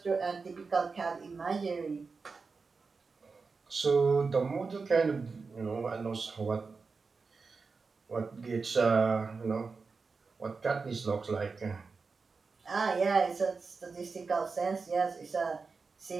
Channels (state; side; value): quieter; left; 4.6 dB